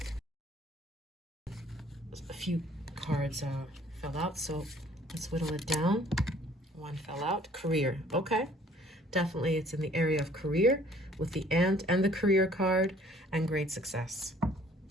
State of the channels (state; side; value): normal; both; correlation 0.57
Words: A few cards fell out, so let's whittle it down. 1 fell out. Career. Okay. Definitely it's in the area of career with the ant and the career card, and great success.